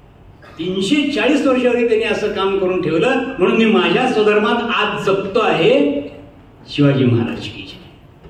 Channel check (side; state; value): both; identical; correlation 1.00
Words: 340 वर्षावरी त्यांनी असं काम करून ठेवलं, म्हणून मी माझ्या स्वधर्मात आज जपतो आहे शिवाजी महाराज की.